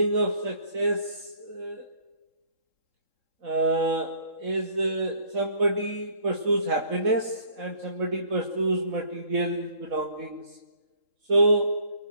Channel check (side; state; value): left; late; 3.7 ms